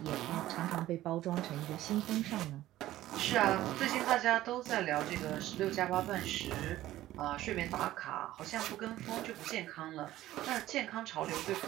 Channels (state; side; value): quieter; left; 14.8 dB